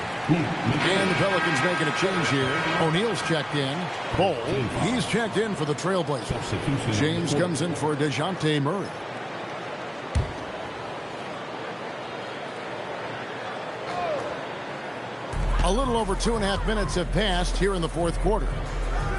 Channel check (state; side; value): identical; both; correlation 1.00